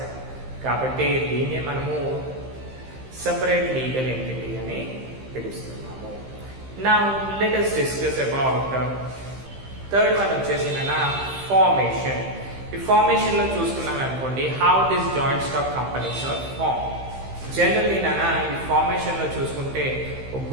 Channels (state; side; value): late; left; 15 ms